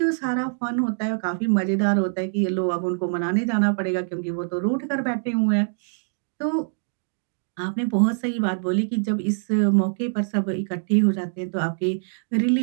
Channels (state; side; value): silent; left; digital silence